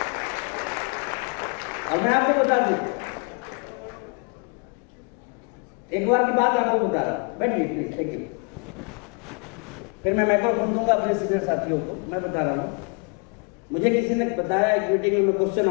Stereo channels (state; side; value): quieter; right; 36.0 dB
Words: और मैं आपको बता दूं, एक बार की बात आपको बता रहा हूं। बैठिए प्लीज, थैंक यू। फिर मैं माइक्रोफोन दूंगा अपने सीनियर साथियों को। मैं बता रहा हूँ, मुझे किसी ने बताया, एक मीटिंग में मैं क्वेश्चन